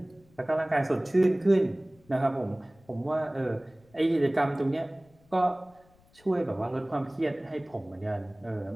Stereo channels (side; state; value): left; noise; rumble, 30 dB below the sound